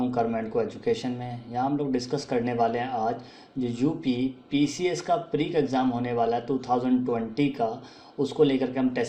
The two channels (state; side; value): identical; both; correlation 1.00